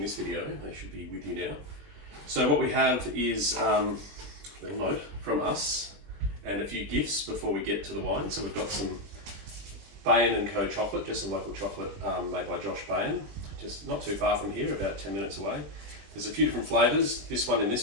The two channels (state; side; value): late; left; 20 ms